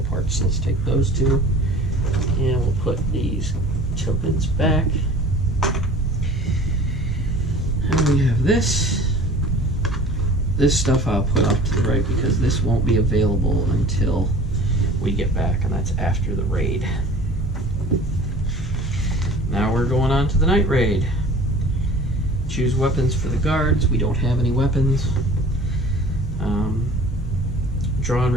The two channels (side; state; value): both; normal; correlation 0.44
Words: parts, so let's take those 2. And we'll put these tokens back. And we have this. This stuff I'll put off to the right because this won't be available until we get back, and that's after the raid. Now we're going on to the night raid. Choose weapons for the guards. We don't have any weapons. Draw and